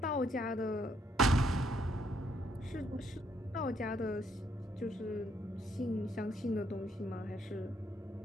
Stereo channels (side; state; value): both; normal; correlation 0.72